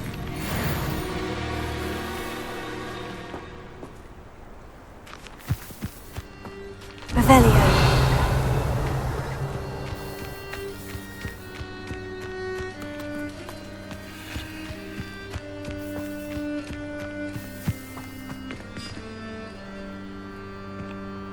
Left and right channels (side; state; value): both; identical; correlation 1.00